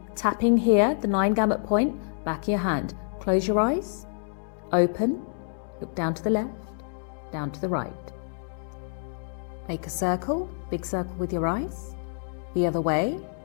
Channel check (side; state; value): right; silent; digital silence